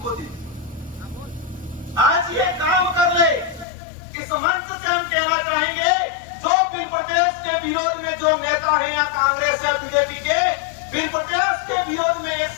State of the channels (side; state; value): right; drops out; at 3.7 s